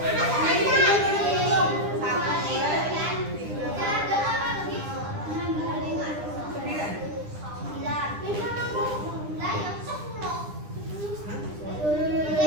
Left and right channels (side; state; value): left; late; 9.9 ms